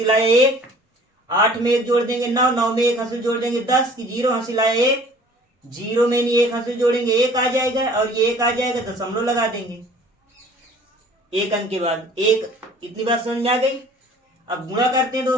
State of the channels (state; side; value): normal; both; correlation 0.50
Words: लाए 1, 8 में 1 जोड़ देंगे 9, 9 में 1 हंसी जोड़ देंगे 10 की 0 हंसी लाए 1, 0 में नहीं 1 हंसी जोड़ेंगे 1 आ जाएगा और ये 1 आ जाएगा दशमलव लगा देंगे 1 अंक के बाद 1। इतनी बात समझ में आ गई। अब गुणा करते हैं